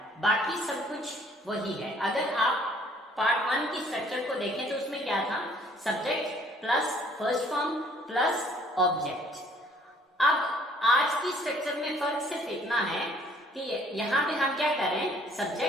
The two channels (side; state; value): both; normal; correlation 0.59